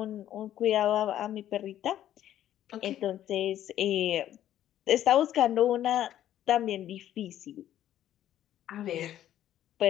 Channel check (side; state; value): right; quieter; 11.9 dB